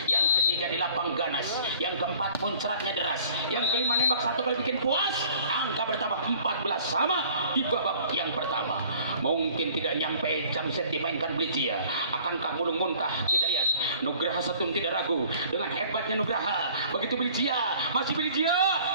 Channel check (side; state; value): both; inverted; correlation -0.52